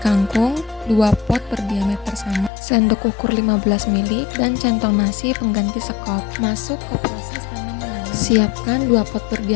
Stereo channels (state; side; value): drops out; right; at 2.5 s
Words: 2 pot berdiameter sama, sendok ukur 15 ml, dan centong nasi pengganti sekop. Masuk ke proses tanam menanam. Siapkan 2 pot